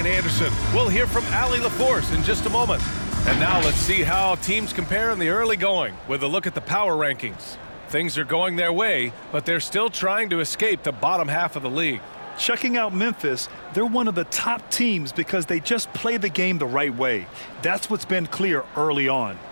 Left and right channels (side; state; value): both; inverted; correlation -1.00